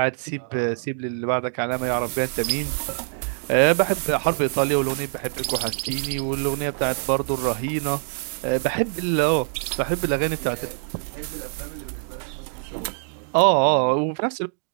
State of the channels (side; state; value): left; silent; digital silence